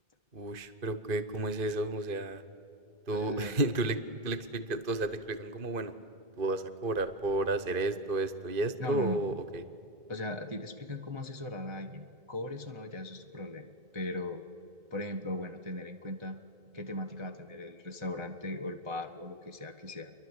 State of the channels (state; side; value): late; left; 2.4 ms